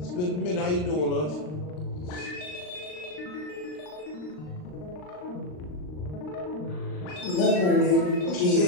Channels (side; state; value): right; late; 39 ms